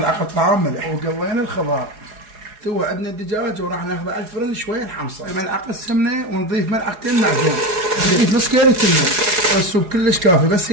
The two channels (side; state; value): left; late; 4.8 ms